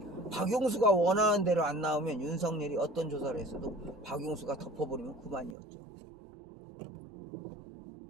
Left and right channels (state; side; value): drops out; left; at 5.6 s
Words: 박용수가 원하는 대로 안 나오면 윤석열이 어떤 조사를 했어도 박용수가 덮어버리면 그만이었죠.